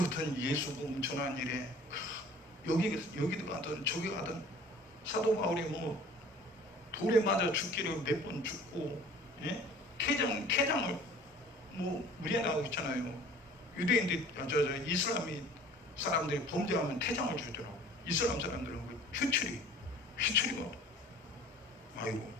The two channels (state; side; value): normal; both; correlation 0.48